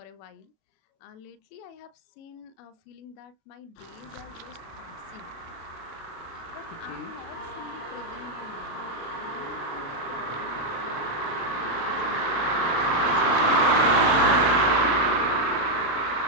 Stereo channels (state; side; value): late; right; 36 ms